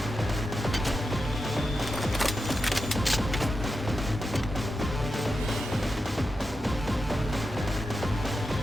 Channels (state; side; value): normal; both; correlation 0.89